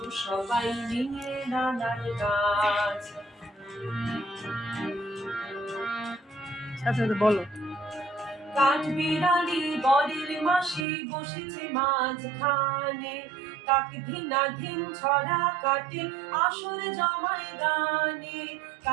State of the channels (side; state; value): left; drops out; at 10.9 s